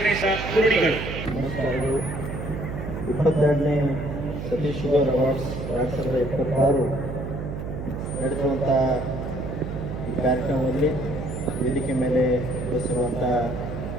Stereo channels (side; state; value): right; noise; hum, 6 dB below the sound